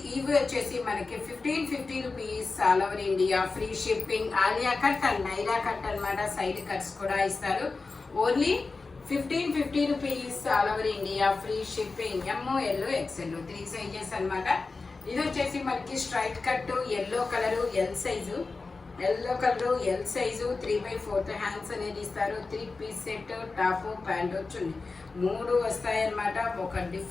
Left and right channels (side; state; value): right; quieter; 4.0 dB